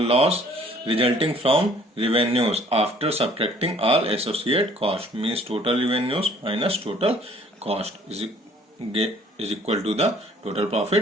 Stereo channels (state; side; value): normal; both; correlation 0.57